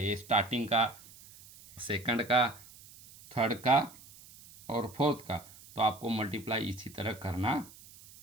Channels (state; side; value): noise; right; hiss, 21 dB below the sound